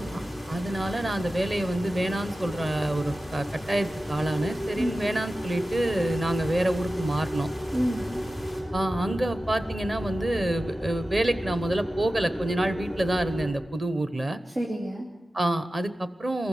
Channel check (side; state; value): both; normal; correlation 0.94